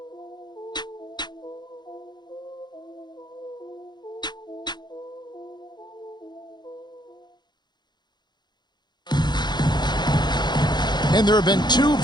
And there have been two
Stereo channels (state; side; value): late; right; 0.21 ms